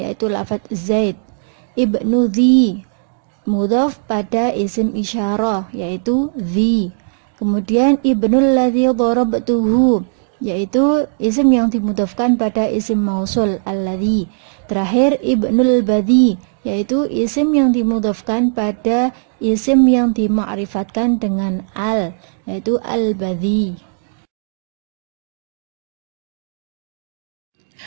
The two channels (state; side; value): silent; left; digital silence